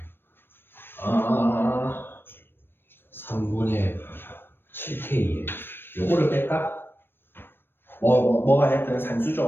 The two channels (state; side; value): late; right; 0.10 ms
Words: 3분의 7K에. 요거를 뺄까? 뭐가 됐든